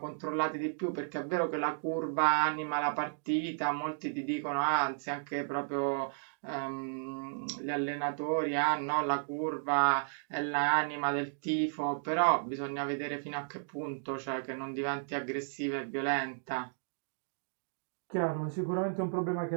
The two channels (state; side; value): silent; left; digital silence